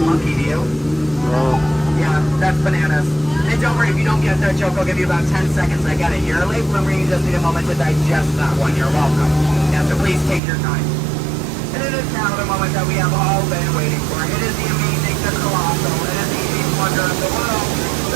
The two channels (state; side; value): drops out; left; at 10.4 s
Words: monkey, do you? Oh. Yeah. That's bananas. And don't worry, if you don't get that joke, I'll give you about 10 seconds. I get it. You're a late bloomer, you just need a moment to digest that one. You're welcome. Yeah, so please take your time. And it is now the moment that we have all been waiting for. It is the amazing, the colossal, it is the eighth wonder of the world.